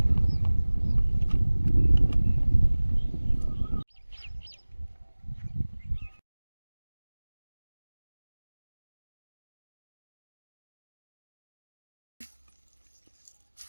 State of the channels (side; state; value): both; inverted; correlation -1.00